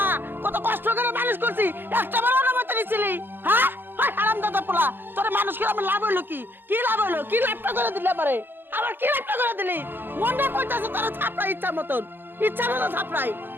কত কষ্ট করে মানুষ করছি, একটাবার অনুমতি নিছিলি? হ্যাঁ, হারামজাদা পোলা, তোর মানুষ করে আমার লাভ হইলো কি? কি লাভ হইলো? কি লাভটা করে দিলে আমারে? আবার কি লাভটা করে দিলি? মনটা কইতাছে তোর থাপড়াই ইচ্ছা মতন থাপড়াই।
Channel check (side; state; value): left; late; 0.099 ms